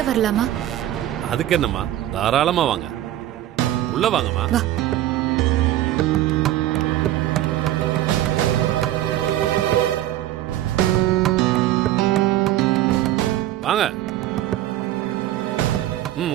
வரலாமா? அதுக்கு என்னம்மா, தாராளமா வாங்க, உள்ள வாங்கம்மா. வா. வாங்க.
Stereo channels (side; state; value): left; quieter; 13.5 dB